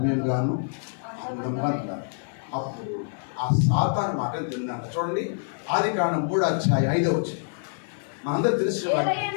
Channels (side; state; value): right; silent; digital silence